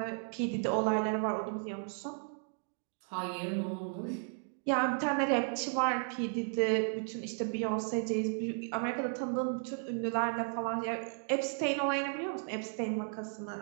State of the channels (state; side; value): silent; left; 55 dB below the other